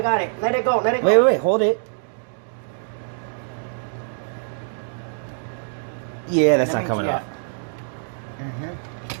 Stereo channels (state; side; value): silent; left; digital silence